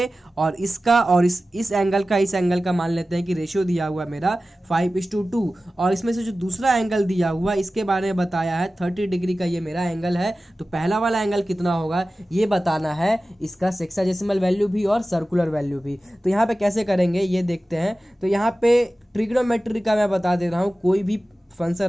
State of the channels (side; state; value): both; normal; correlation 0.95